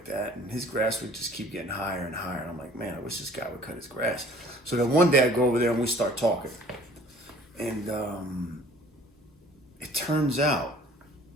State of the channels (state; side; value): normal; both; correlation 0.52